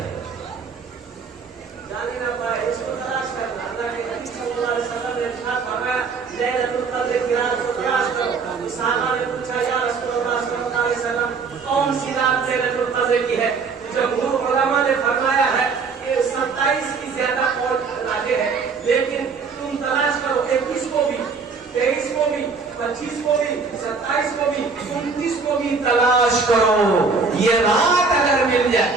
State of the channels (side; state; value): left; quieter; 4.8 dB